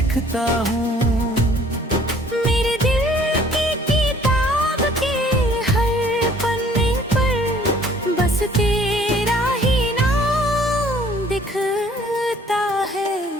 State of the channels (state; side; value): normal; both; correlation 0.56